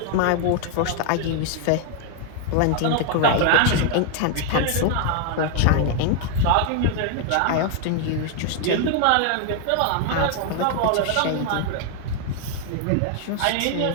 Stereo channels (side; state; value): both; different; correlation 0.00